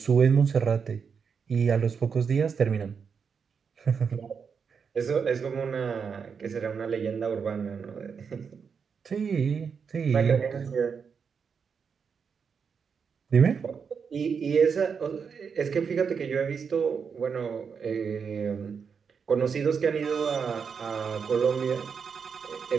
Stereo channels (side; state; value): left; quieter; 6.2 dB